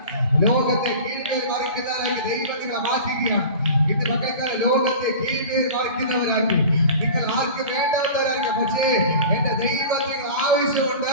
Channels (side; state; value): both; inverted; correlation -0.37